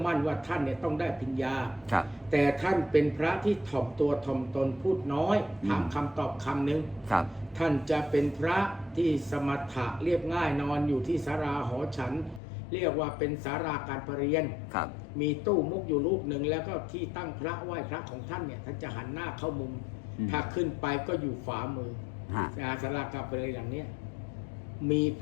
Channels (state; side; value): drops out; right; at 12.4 s